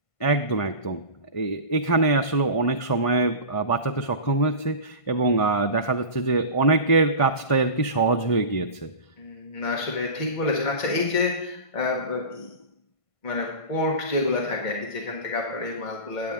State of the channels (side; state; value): right; late; 1.5 ms